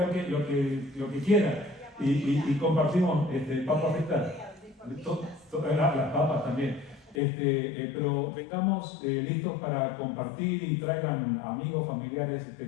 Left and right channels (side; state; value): right; drops out; at 7.2 s